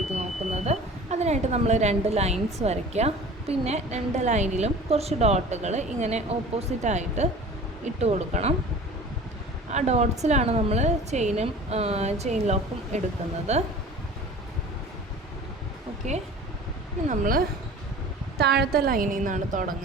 നോക്കുന്നത്. അതിനായിട്ട് നമ്മൾ 2 ലൈൻസ് വരയ്ക്കുക. പിന്നെ 2 ലൈനിലും കുറച്ച് ഡോട്ടുകൾ ഇങ്ങനെ ഓപ്പോസിറ്റായിട്ട് ഇട്ട് കൊടുക്കണം. ആ ഡോട്ട്സിലാണ് നമ്മൾ ചെയിൻ ലോക്കും എടുക്കുന്നത്. ഓക്കെ, ഇനി നമ്മൾ താഴത്തെ ലൈനിൽ നിന്നാണ്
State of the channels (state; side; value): normal; both; correlation 0.41